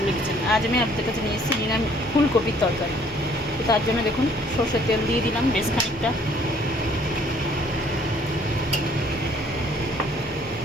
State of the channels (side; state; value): both; normal; correlation 0.60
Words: kitchen. आज मैं आपके কাছে নিয়ে এসেছি ফুলকপির তরকারি। তো তার জন্য দেখুন সরষের তেল দিয়ে দিলাম বেশ খানিকটা।